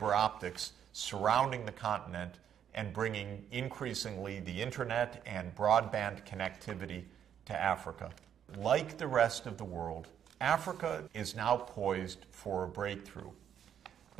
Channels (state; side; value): quieter; left; 9.2 dB